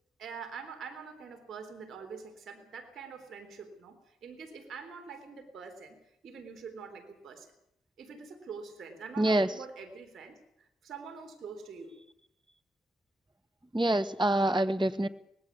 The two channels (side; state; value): both; normal; correlation 0.85